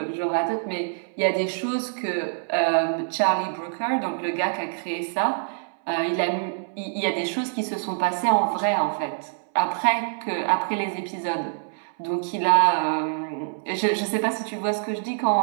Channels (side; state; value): left; silent; 62 dB below the other